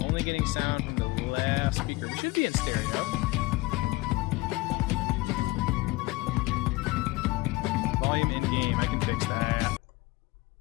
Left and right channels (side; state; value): right; quieter; 21.5 dB